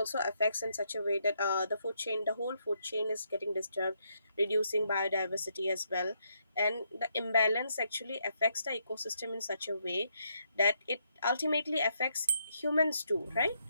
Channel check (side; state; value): both; inverted; correlation -0.76